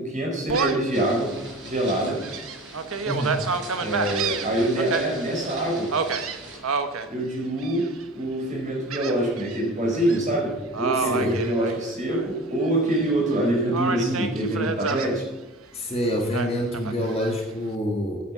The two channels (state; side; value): normal; both; correlation 0.39